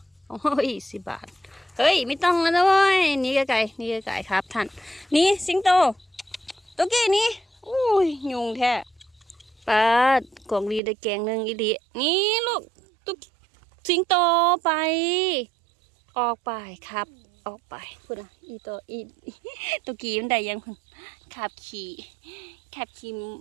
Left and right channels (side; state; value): left; drops out; at 10.8 s